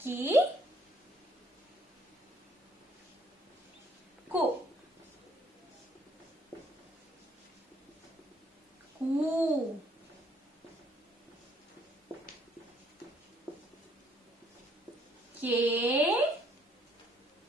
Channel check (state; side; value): normal; both; correlation 0.65